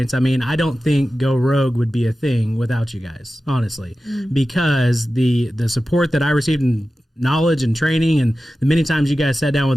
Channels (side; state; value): both; normal; correlation 0.94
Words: I mean, I don't think Go Rogue would be a thing without you guys, honestly, because the support that I received in knowledge and training, and the many times you guys sat down with